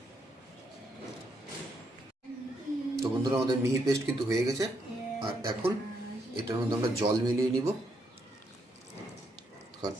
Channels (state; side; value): normal; both; correlation 0.76